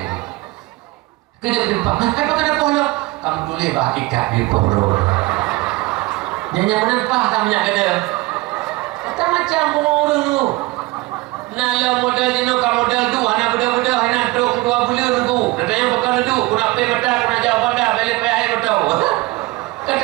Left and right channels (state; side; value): quieter; left; 21.4 dB